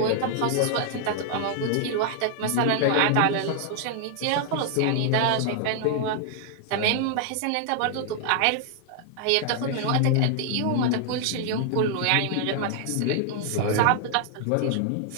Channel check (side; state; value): both; different; correlation 0.00